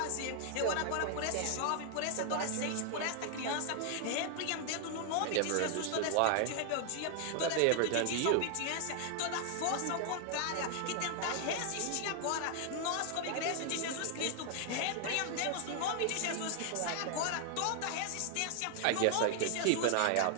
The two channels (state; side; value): different; both; correlation 0.00